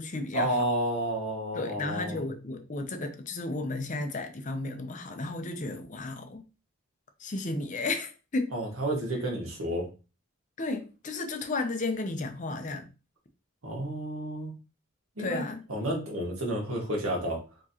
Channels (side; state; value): both; normal; correlation 0.22